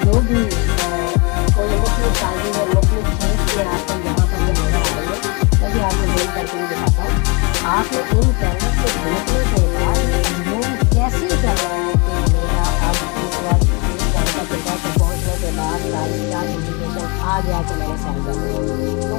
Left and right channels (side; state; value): right; quieter; 29.9 dB